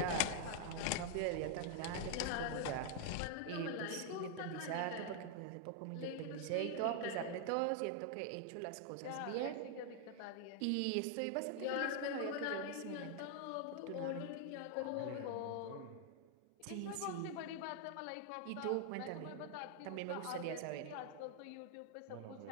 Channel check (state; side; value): different; both; correlation 0.00